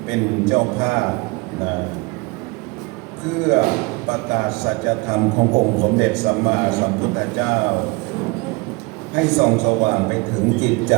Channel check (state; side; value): quieter; left; 26.5 dB